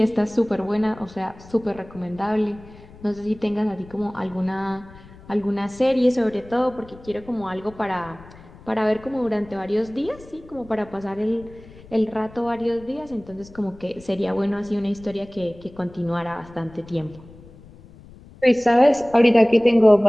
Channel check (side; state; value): left; noise; rumble, 21 dB below the sound